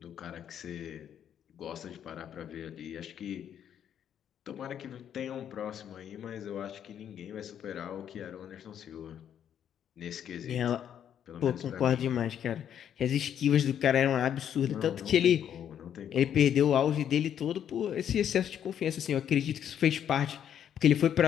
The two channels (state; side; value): quieter; right; 9.4 dB